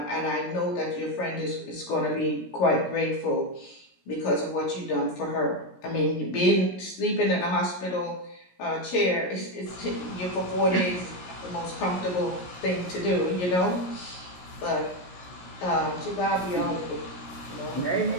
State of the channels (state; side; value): late; right; 17 ms